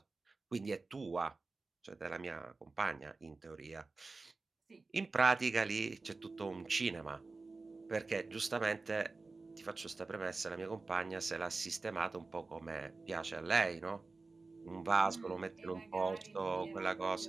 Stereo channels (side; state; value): left; quieter; 3.8 dB